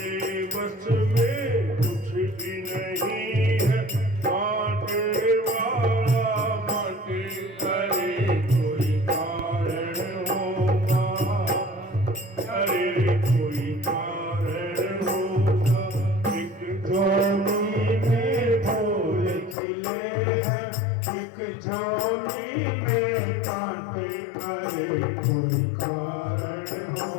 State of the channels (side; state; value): right; drops out; at 19.6 s